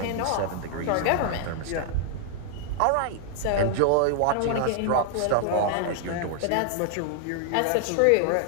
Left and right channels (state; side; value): different; both; correlation 0.00